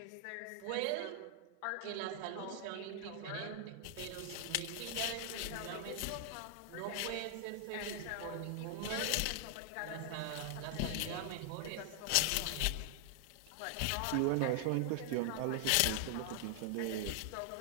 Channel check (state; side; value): different; both; correlation 0.00